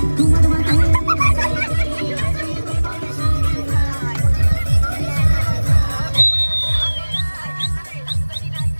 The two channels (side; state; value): both; inverted; correlation -1.00